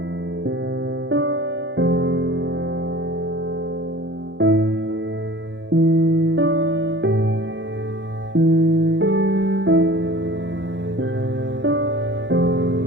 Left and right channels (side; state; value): left; late; 0.54 ms